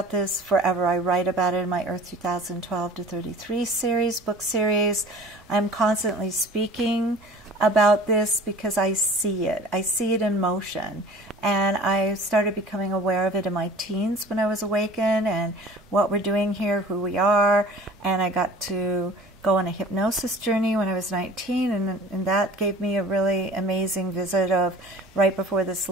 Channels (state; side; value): normal; both; correlation 0.44